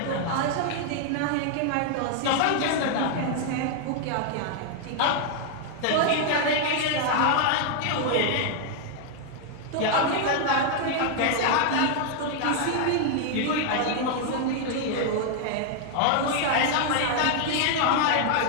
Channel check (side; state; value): both; different; correlation 0.00